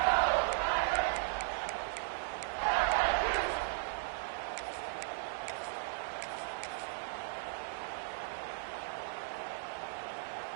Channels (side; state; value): left; silent; digital silence